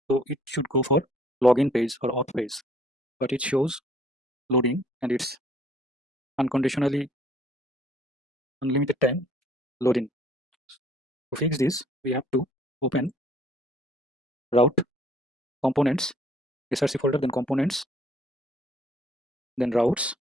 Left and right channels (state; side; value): normal; both; correlation 0.60